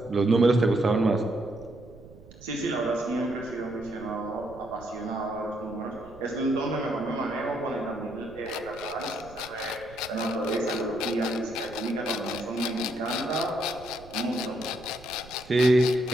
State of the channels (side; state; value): right; noise; rumble, 20 dB below the sound